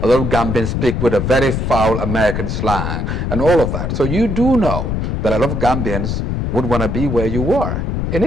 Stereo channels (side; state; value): left; noise; rumble, 1 dB below the sound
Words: A lot of Gambians speak with a very foul American slang and all of that. So you do know that a lot of Gambians would want to be where you were, in